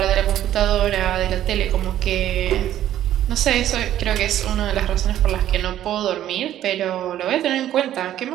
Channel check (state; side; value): quieter; left; 12.1 dB